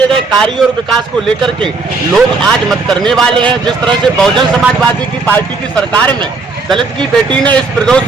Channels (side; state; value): left; quieter; 3.9 dB